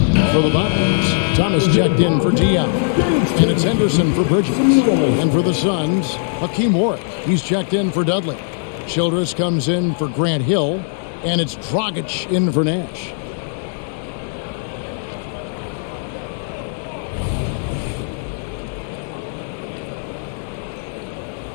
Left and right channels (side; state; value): right; silent; 66 dB below the other